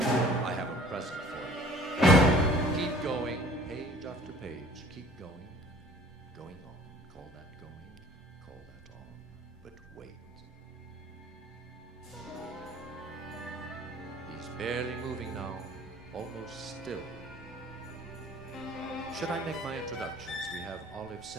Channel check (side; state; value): both; normal; correlation 0.51